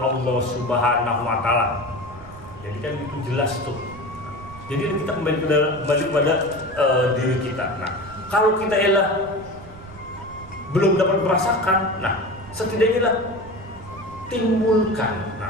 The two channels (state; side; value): noise; right; rumble, 18 dB below the sound